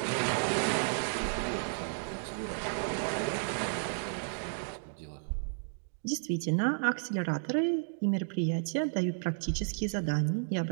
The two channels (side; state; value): left; silent; digital silence